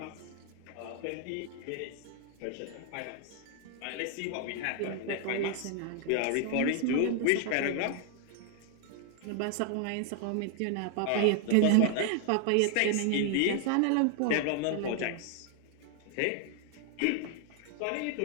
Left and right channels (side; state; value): both; different; correlation 0.00